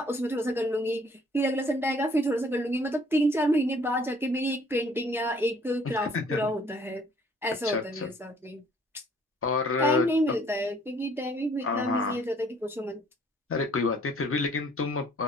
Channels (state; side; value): normal; both; correlation 0.59